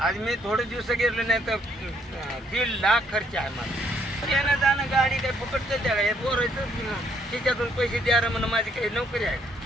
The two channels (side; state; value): both; normal; correlation 0.69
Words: मी थोडे दिवस गेलो नाही तर 1.5 लाख खर्च आहे माझा. येणं जाणं गाडी काही फुकटच द्या हे बोरायचं त्याच्यातून पैसे द्या म्हणून माझी काही नोकरी आहे.